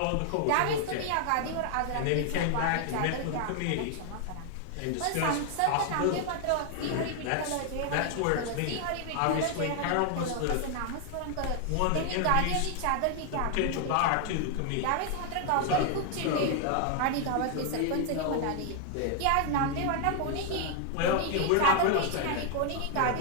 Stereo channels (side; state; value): both; different; correlation 0.00